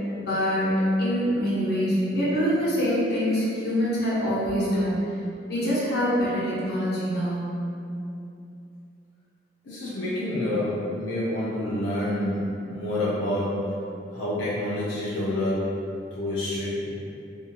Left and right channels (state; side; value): normal; both; correlation 0.57